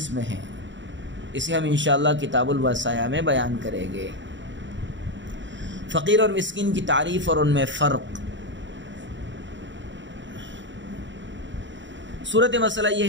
ہیں، اسے ہم انشاءاللہ کتاب الوصایا میں بیان کریں گے۔ فقیر اور مسکین کی تعریف اور ان میں فرق۔ صورت مسئلہ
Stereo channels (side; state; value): left; late; 0.54 ms